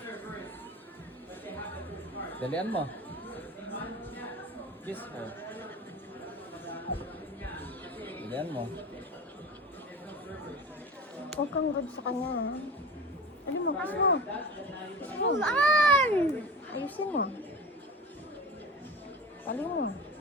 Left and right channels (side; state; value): both; normal; correlation 0.33